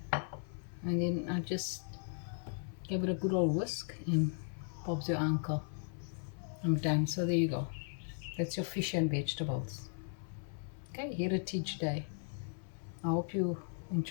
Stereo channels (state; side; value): silent; right; 53 dB below the other